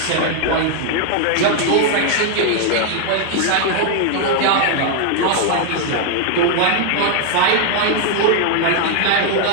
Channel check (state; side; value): different; both; correlation 0.00